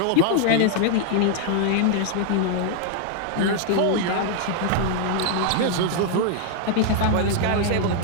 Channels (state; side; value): different; both; correlation 0.00